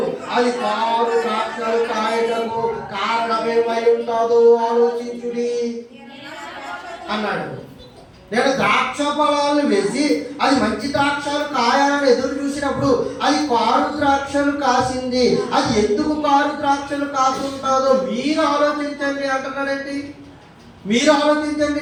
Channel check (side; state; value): both; identical; correlation 1.00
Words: అది 6 ద్రాక్షలు కాయటకు కారణమేమై ఉంటుందో ఆలోచించుడి అన్నాడు. నేను ద్రాక్ష ఫలాలను వేసి అది మంచి ద్రాక్షలు కాయాలని ఎదురు చూసినప్పుడు అది 6 ద్రాక్షలు కాసింది. అది ఎందుకు 6 ద్రాక్షలు కాసుంటుందో మీరు ఆలోచించండి అంటున్నాడండి. మీరు ఆలోచించండి,